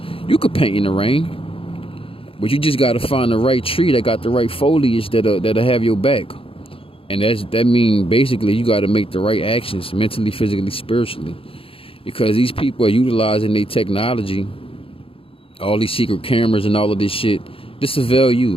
You could paint in the rain, but you just got to find the right tree that got the right foliage that'll have your back. And that means basically you got to make the right actions mentally, physically, spiritually. Because these people are utilizing their technology, all these secret cameras and all of this shit, to surveil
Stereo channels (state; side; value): late; right; 0.27 ms